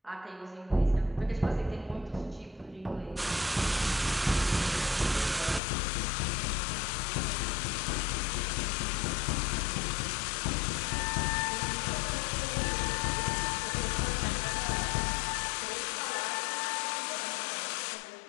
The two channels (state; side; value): drops out; right; at 5.6 s